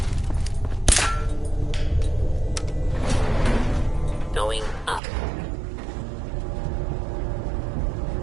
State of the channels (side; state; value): left; drops out; at 5.0 s